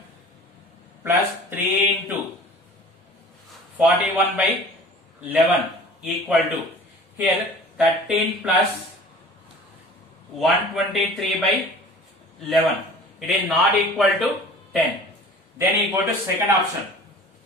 plus 3 into 41 by 11 equal to, here 13 plus 123 by 11. It is not equal to 10. Then you go to second option.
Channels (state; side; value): normal; both; correlation 0.44